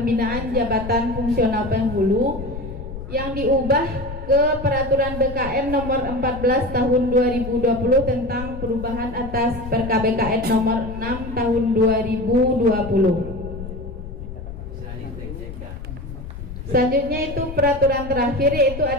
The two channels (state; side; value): noise; left; rumble, 10 dB below the sound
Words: jabatan fungsional penghulu yang diubah ke Peraturan BKN nomor 14 tahun 2020 tentang perubahan atas PKBKN nomor 6 tahun 2020. Selanjutnya itu peraturan terakhir yaitu